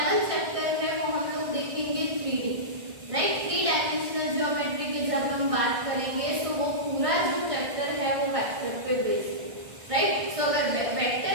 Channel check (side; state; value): left; late; 1.6 ms